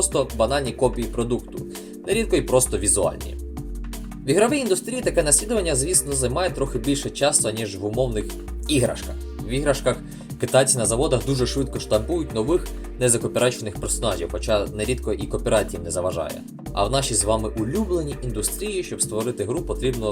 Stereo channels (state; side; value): identical; both; correlation 1.00